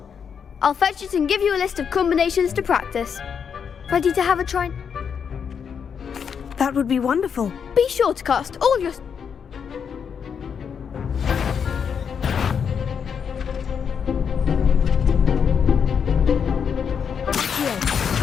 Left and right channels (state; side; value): quieter; right; 7.0 dB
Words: I'll fetch it and give you a list of combinations to practice. Ready to have a try? That would be wonderful. Be sure to cast all your...